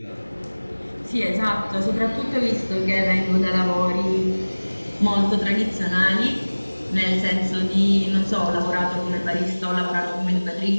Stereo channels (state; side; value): inverted; both; correlation -1.00